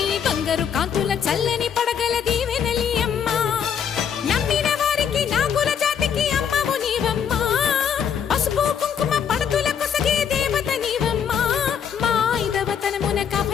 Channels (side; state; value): right; quieter; 7.8 dB